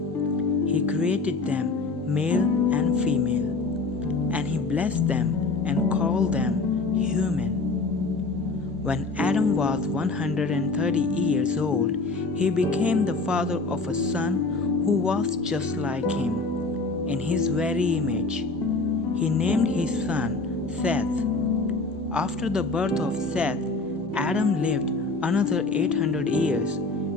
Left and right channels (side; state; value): right; quieter; 3.5 dB